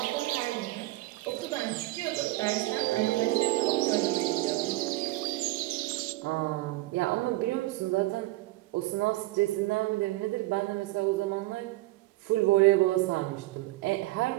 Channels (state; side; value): quieter; left; 18.8 dB